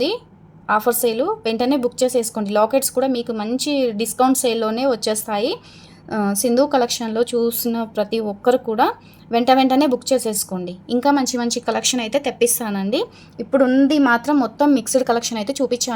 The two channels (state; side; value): identical; both; correlation 1.00